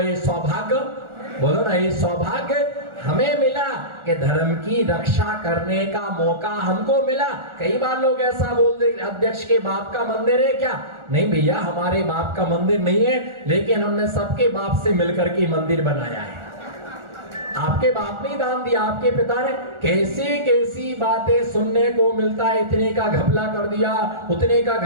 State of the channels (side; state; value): left; late; 1.4 ms